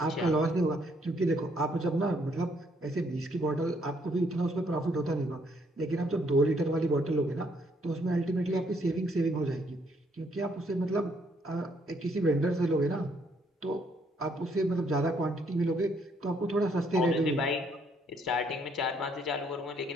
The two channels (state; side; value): normal; both; correlation 0.69